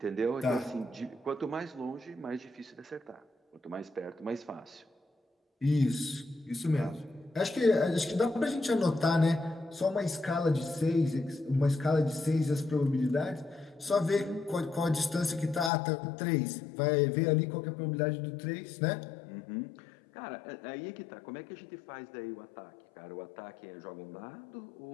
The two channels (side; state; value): right; drops out; at 15.7 s